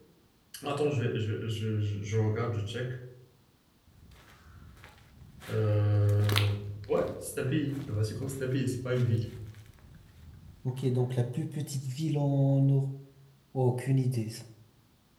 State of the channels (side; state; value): both; identical; correlation 1.00